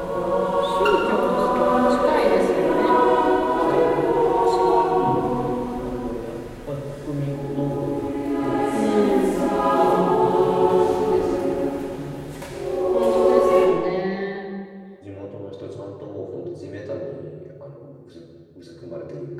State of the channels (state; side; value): identical; both; correlation 1.00